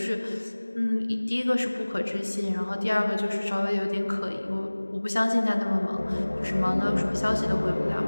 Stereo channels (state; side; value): inverted; both; correlation -1.00